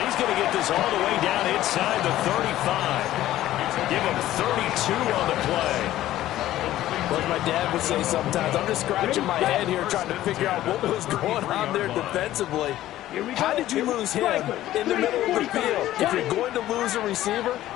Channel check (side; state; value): right; quieter; 14.1 dB